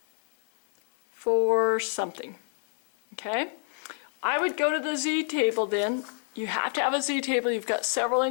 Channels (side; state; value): right; silent; 59 dB below the other